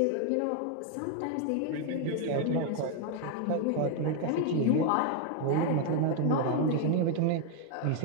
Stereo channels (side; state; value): both; different; correlation 0.01